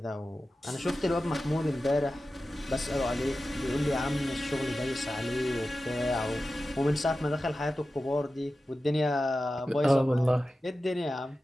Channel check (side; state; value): both; normal; correlation 0.94